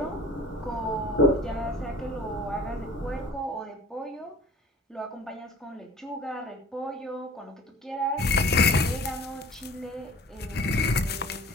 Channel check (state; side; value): normal; both; correlation 0.45